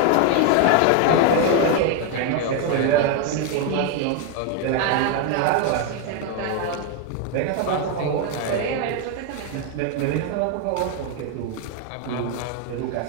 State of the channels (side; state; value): both; different; correlation 0.01